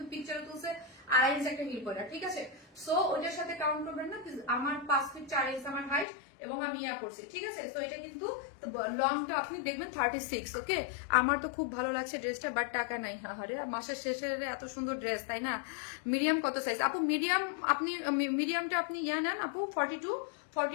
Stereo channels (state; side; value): drops out; right; at 6.1 s